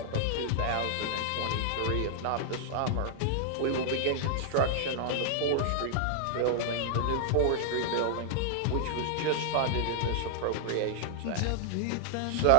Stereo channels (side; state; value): both; different; correlation -0.01